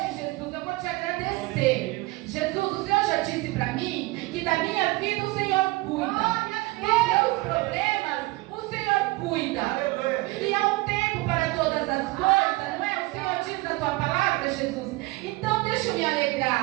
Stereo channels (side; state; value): left; quieter; 22.0 dB